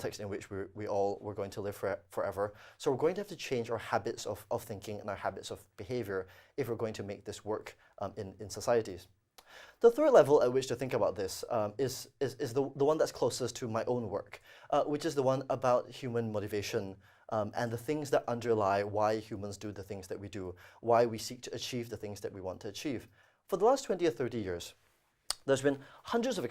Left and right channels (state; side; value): identical; both; correlation 1.00